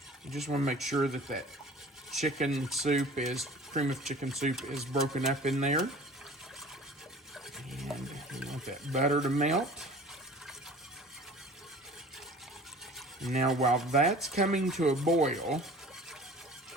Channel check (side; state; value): both; normal; correlation 0.44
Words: You just want to make sure that that chicken soup cream of chicken soup is broken up in there. And you want that butter to melt. Now while that's coming to a boil,